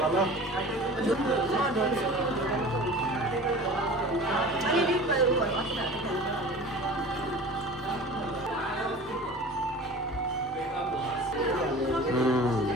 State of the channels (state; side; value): normal; both; correlation 0.39